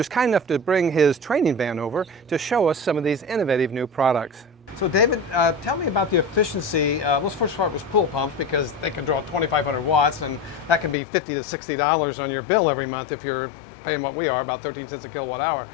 kind enough to bring his training van over to show us some of these innovative new products. So David, tell me about the efficiency. Let's first start with pool pumps because they can draw 2,500 watts, and that can be $50 to $60 on your bill every month if you're paying what we are, about 13 cents a kilowatt hour.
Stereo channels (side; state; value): right; drops out; at 11.0 s